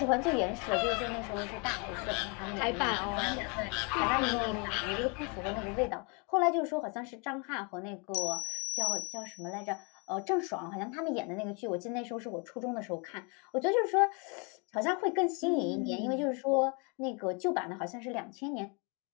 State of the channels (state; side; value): quieter; right; 33.8 dB